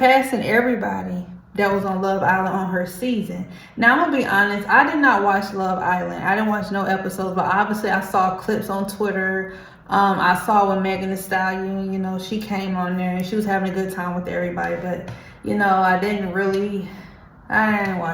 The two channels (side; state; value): both; identical; correlation 1.00